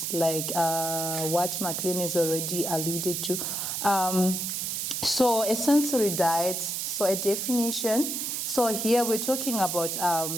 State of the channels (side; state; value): right; noise; hiss, 2 dB below the sound